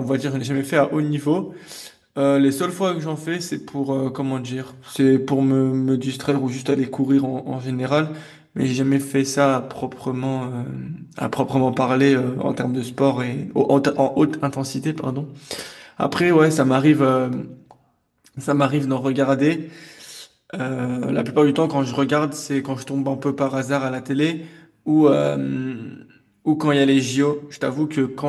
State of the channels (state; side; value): identical; both; correlation 1.00